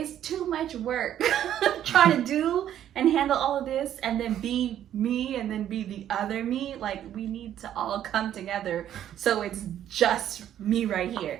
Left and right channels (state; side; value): quieter; left; 10.9 dB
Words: too much work trying to do and handle all of this and then be me and then be the other me. Like, we need to all come together so it's just me right